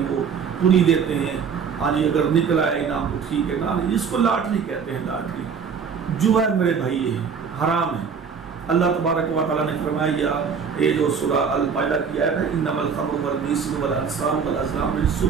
وہ پوری دیتے ہیں، ہاں جی اگر نکل آئے انعام تو ٹھیک ہے نا، اس کو لاٹری کہتے ہیں۔ لاٹری جوا ہے میرے بھائی، یہ حرام ہے۔ اللہ تبارک و تعالیٰ نے فرمایا یہ جو سورہ المائدہ کی آیت ہے انما الخمر والمیسر والانصاب والازلام رجس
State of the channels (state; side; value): quieter; left; 6.3 dB